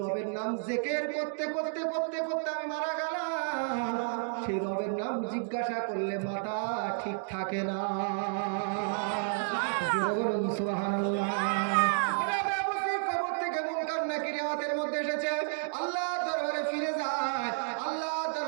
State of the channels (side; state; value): left; silent; digital silence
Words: নাম জিকির করতে আমি মারা গেলাম, সেই রবের নাম জিজ্ঞাসা করলে মাথা ঠিক থাকে না। বলুন সুবহানাল্লাহ। রাবিয়া বসরির কবর থেকে মুনকার নাকির রিওয়ায়াতের মধ্যে এসেছে আল্লাহর দরবারে ফিরে যায়, আল্লাহর